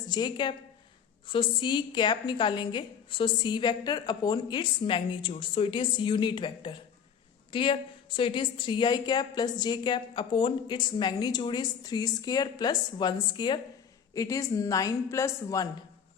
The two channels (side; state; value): right; quieter; 7.5 dB